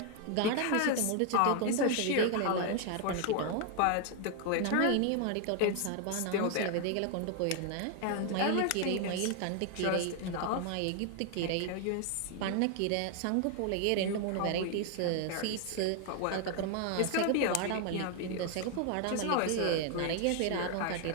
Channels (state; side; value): different; both; correlation 0.00